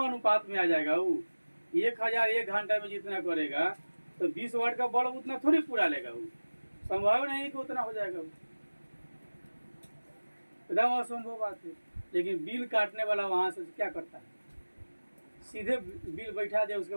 में आ जाएगा वो। 1000 1 घंटा में जितना करेगा तो 20 वाट का बल्ब उतना थोड़ी पूरा लेगा वो, संभव नहीं कि उतना हो जाएगा वो, एकदम असंभव बात है। लेकिन बिल काटने वाला वहां से क्या करता है, सीधे बिल बैठा दे, उसके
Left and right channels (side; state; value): both; inverted; correlation -1.00